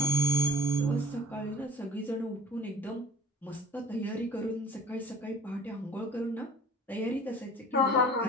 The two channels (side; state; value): both; normal; correlation 0.47